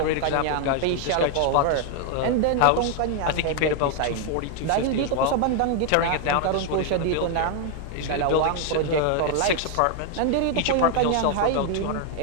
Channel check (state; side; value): different; both; correlation 0.00